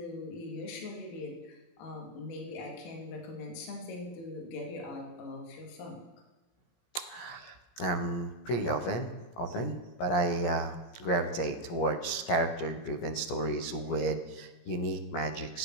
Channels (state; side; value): late; right; 17 ms